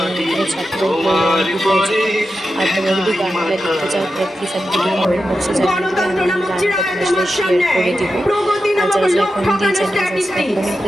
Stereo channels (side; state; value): both; normal; correlation 0.90